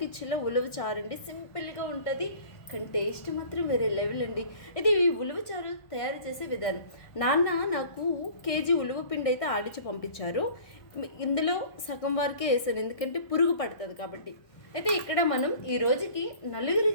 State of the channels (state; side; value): late; right; 1.6 ms